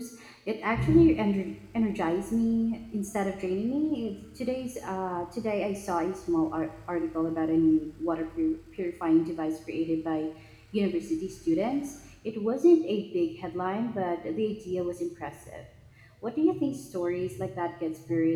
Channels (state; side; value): identical; both; correlation 1.00